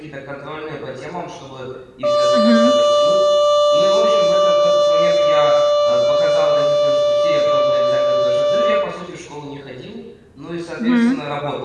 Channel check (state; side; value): identical; both; correlation 1.00